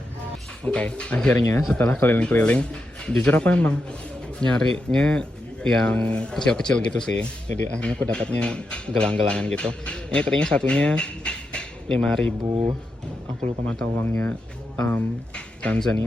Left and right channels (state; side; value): normal; both; correlation 0.86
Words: Oke, akhirnya setelah keliling-keliling, jujur aku emang nyarinya yang kecil-kecil gitu sih. Jadi akhirnya aku dapatnya gelang-gelangan gitu. Ini tadinya satunya 5.000. Aku lupa mata uangnya